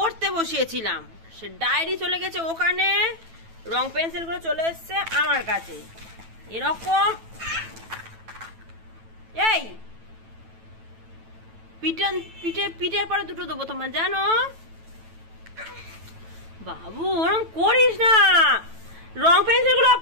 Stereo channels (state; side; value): late; left; 9.1 ms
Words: বসিয়েছিলাম, সে ডায়েরি চলে গেছে ওখানে, রং পেন্সিল গুলো চলে এসছে আমার কাছে। এরকম এই পিঠের পরে দুটো দেবো তোমার, জানো বাবু? ওরকম করিস না, রং পেন্সিল গুলো